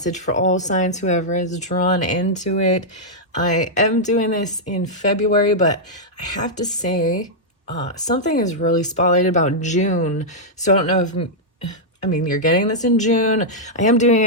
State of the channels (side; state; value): both; normal; correlation -0.07